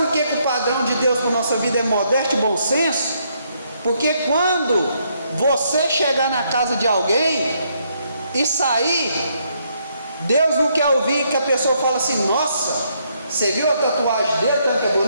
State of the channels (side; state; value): both; inverted; correlation -0.73